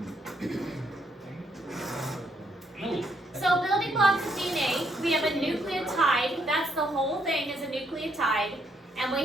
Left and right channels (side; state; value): both; normal; correlation 0.73